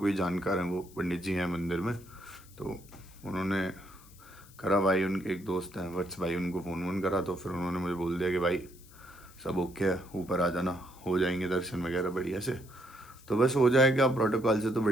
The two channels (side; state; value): left; noise; hiss, 24 dB below the sound